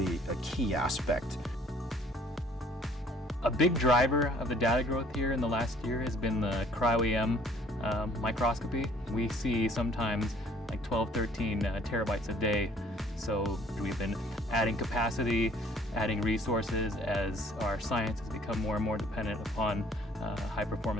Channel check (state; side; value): normal; both; correlation 0.57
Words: a key aspect. A big driver of the data growth here in the last year has been the cryo-EM microscopy. We see sometimes like 12, 13 terabytes a day. So we've been adding capacity, adding resources as our science has become more and more dependent upon